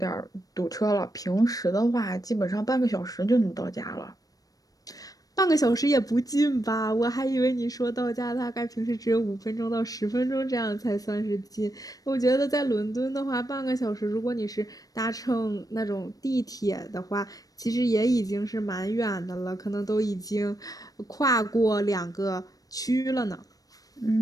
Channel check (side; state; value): right; late; 0.18 ms